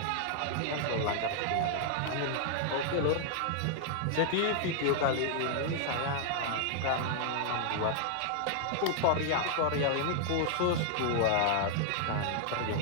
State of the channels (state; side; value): different; both; correlation 0.00